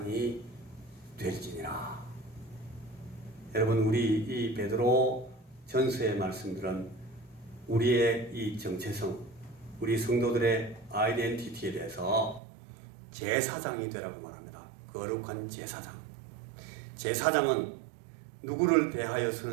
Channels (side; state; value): left; drops out; at 12.4 s